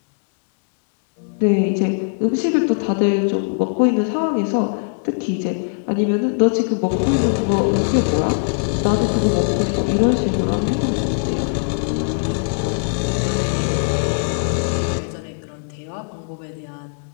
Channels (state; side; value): silent; right; digital silence